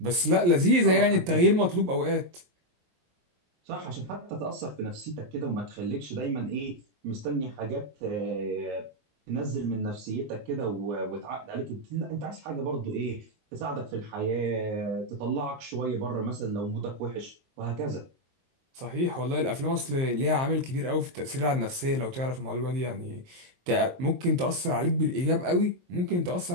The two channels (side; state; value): left; late; 23 ms